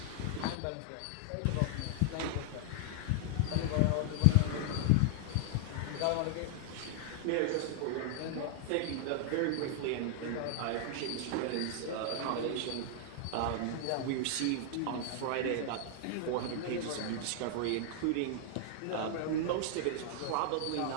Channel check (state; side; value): different; both; correlation -0.01